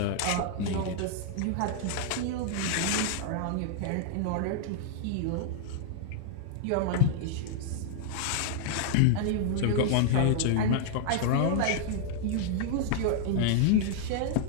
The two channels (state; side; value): different; both; correlation -0.01